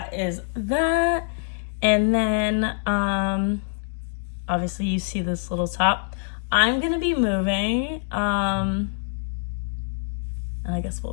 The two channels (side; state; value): right; silent; 62 dB below the other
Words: is that. And then obviously you see this little top. I'm going to be moving. And I guess